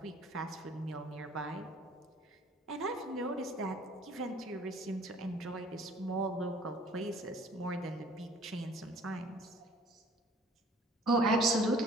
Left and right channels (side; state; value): both; normal; correlation 0.53